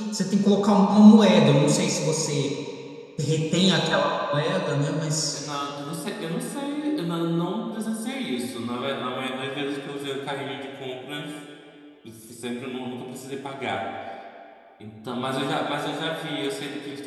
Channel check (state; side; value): identical; both; correlation 1.00